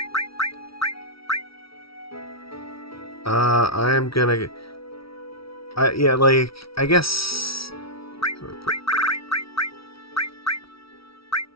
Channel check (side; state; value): right; late; 0.75 ms